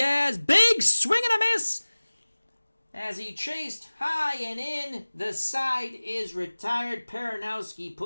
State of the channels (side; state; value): both; inverted; correlation -1.00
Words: Big swing and a miss. As he chased high and in, the side is retired. Peronowski